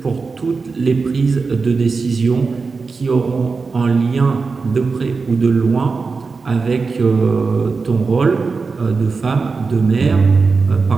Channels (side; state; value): left; quieter; 4.5 dB